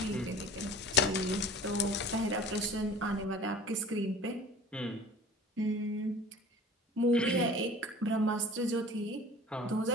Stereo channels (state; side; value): normal; both; correlation 0.43